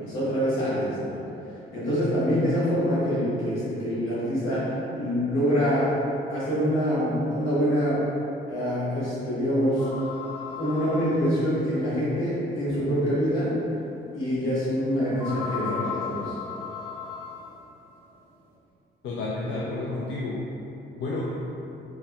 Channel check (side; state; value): both; normal; correlation 0.57